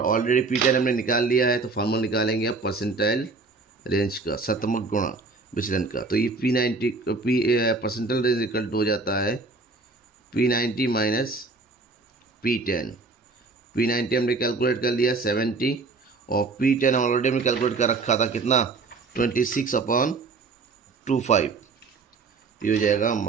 ऑलरेडी P10 हमने निकाल लिया है। तो फार्मूला निकालेंगे अब परसेंटाइल रेंज का, शतमक गुणा विचलन का। तो ये P90 percentile range equal to हो जाता है P90 माइनस P10। P90 हमने कैलकुलेट कर लिया 70 और P10 ऑलरेडी हमने कैलकुलेट कर रखा था कितना 26 अपॉन 25। ये हो जाएगा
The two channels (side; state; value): left; quieter; 3.9 dB